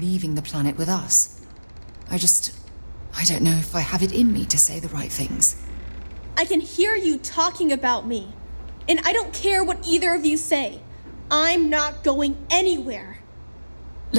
the planet with us. I don't know if I have it in me to say the right things. I can hear you talking about me. And I don't care what either of you say. I'm not going anywhere.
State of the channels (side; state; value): both; inverted; correlation -1.00